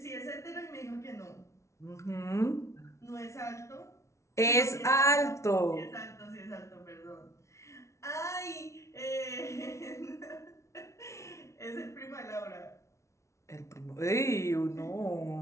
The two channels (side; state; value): right; late; 0.14 ms